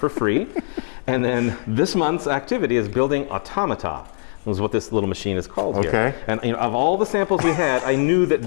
free. And then this month's activity is building automata. Is what this little machine is called here. And of all the samples we had, I knew that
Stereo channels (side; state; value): right; silent; 61 dB below the other